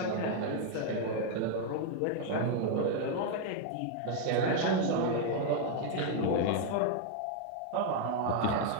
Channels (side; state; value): both; different; correlation 0.00